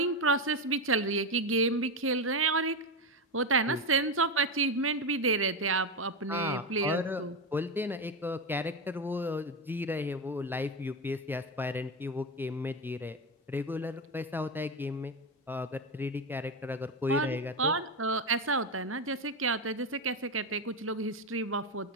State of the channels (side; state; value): both; normal; correlation 0.13